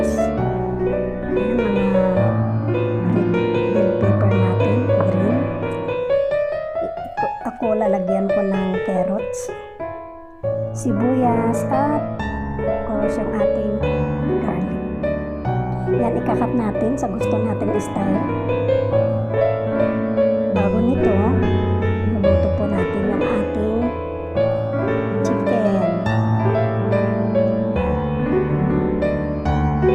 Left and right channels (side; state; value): both; identical; correlation 1.00